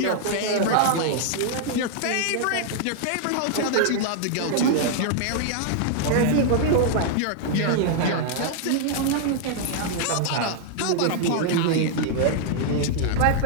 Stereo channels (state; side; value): different; both; correlation -0.01